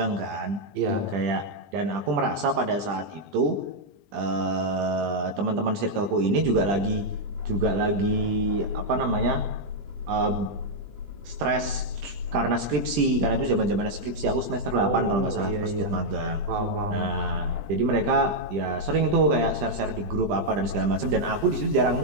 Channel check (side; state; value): left; late; 20 ms